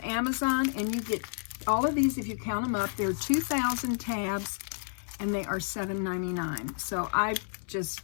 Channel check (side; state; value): right; silent; 57 dB below the other